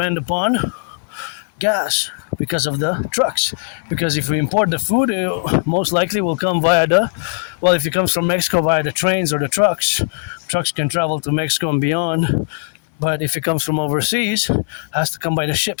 upon gas because of the trucks. Because if we import the food, it most likely will come via if it comes from Mexico, via the trains or the trucks. Trucks can travel to Mexico and beyond. But if it comes from overseas, it has to come by the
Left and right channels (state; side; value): silent; right; digital silence